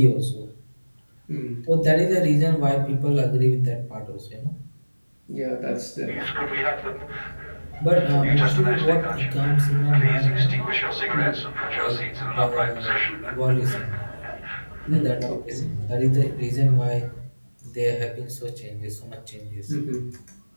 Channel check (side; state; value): both; inverted; correlation -1.00